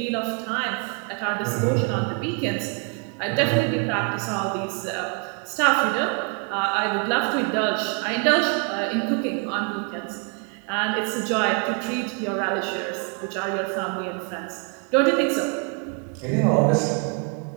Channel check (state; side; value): quieter; left; 36.1 dB